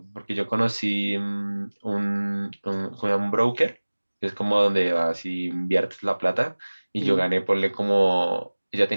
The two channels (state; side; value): inverted; both; correlation -1.00